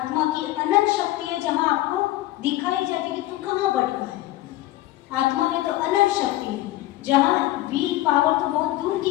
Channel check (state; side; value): quieter; right; 16.2 dB